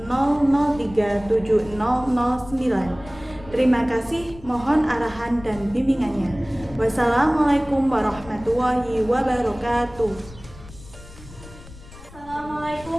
Terima kasih, mohon arahan dan bimbingannya. Wassalamualaikum warahmatullahi wabarakatuh.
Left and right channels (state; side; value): noise; left; rumble, 18 dB below the sound